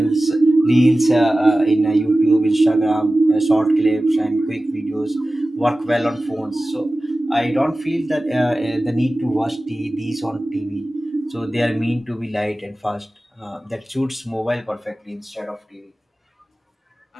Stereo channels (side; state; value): both; normal; correlation 0.96